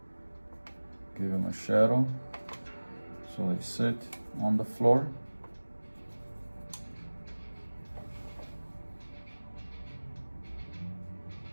give them a shadow so they sit on the floor.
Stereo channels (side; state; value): both; inverted; correlation -1.00